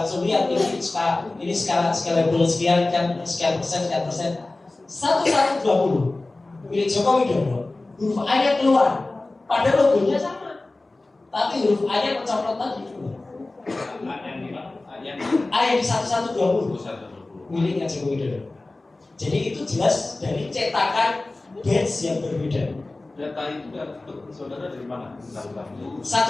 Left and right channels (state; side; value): quieter; right; 3.0 dB